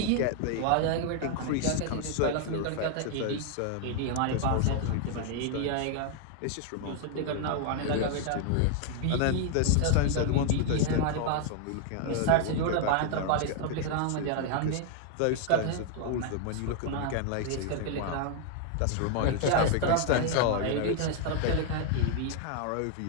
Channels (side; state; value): both; different; correlation 0.00